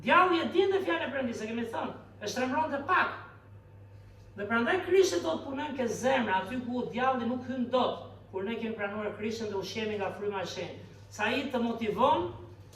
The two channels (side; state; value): both; identical; correlation 1.00